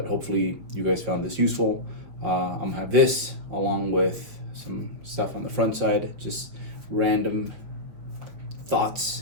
hopefully you guys found this useful. I'm gonna have this along with some stuff on the front side, just random thoughts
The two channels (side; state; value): left; late; 5.9 ms